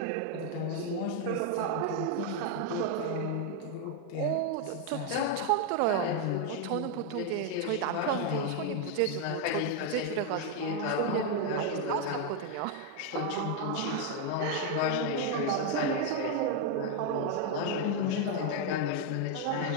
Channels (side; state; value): both; different; correlation 0.01